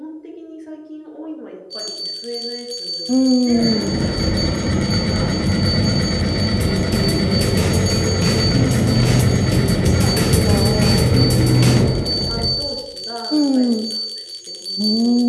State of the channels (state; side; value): identical; both; correlation 1.00